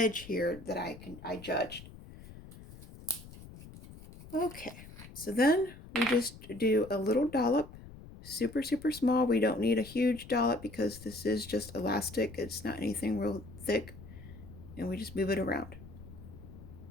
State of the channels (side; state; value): left; noise; rumble, 17 dB below the sound